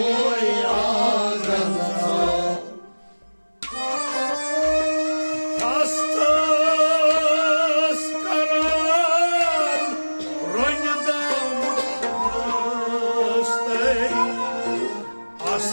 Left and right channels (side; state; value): both; inverted; correlation -1.00